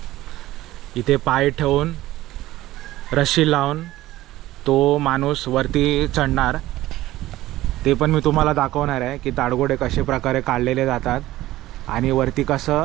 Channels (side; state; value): left; quieter; 16.0 dB